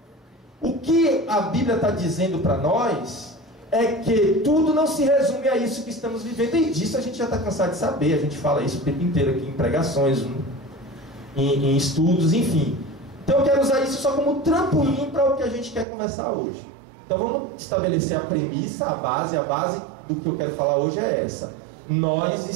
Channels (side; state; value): left; drops out; at 15.9 s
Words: O que a Bíblia está dizendo para nós é que tudo não se resume a isso que estamos vivendo. E disso a gente já está cansado de saber. A gente fala isso o tempo inteiro aqui em pregações, em estudos, enfim. Então eu quero usar isso só como trampolim para o que a gente quer conversar hoje. Então vamos estabelecer a premissa, a base do que eu quero falar hoje é essa.